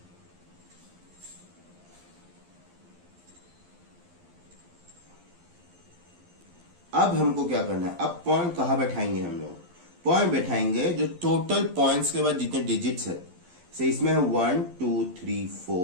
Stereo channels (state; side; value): late; left; 12 ms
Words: अब हमको क्या करना है, अब पॉइंट कहाँ बैठाएंगे हम लोग? पॉइंट बैठाएंगे जो टोटल पॉइंट्स के बाद जितने डिजिट्स है, से इसमें है 1 2 3